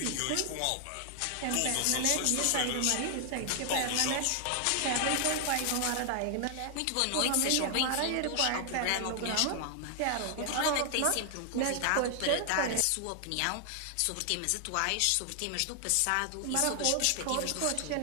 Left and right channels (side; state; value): both; different; correlation 0.00